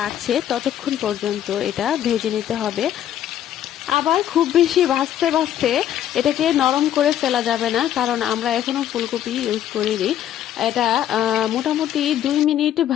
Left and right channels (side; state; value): right; quieter; 11.2 dB